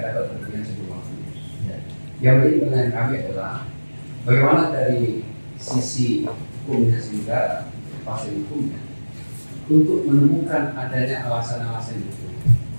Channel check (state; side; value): inverted; both; correlation -1.00